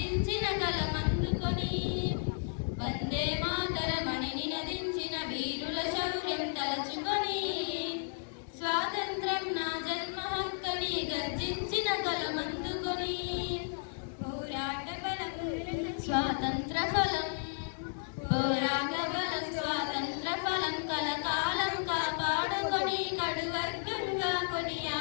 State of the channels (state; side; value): silent; right; digital silence